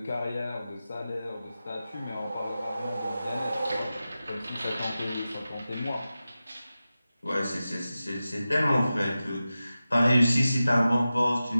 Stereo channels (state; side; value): inverted; both; correlation -0.94